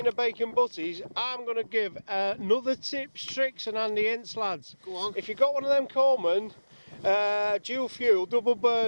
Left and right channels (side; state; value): both; inverted; correlation -1.00